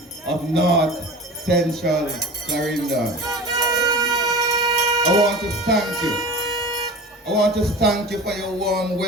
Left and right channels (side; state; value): both; normal; correlation 0.35